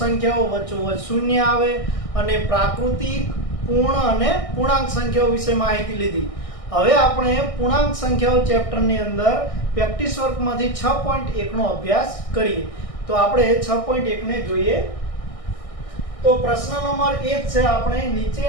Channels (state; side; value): late; right; 1.6 ms